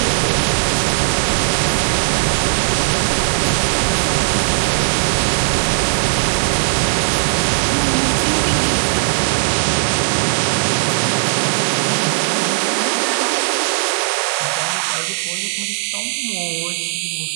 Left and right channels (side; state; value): left; silent; digital silence